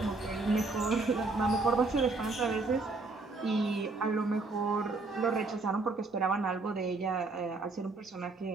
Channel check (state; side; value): quieter; left; 3.5 dB